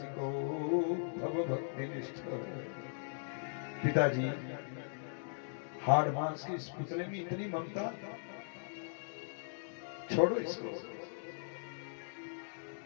भवभक्तिनिष्ठ। पिताजी हाड़ मांस के इस पुतले में इतनी ममता, छोड़ो इसको।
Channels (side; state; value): right; silent; digital silence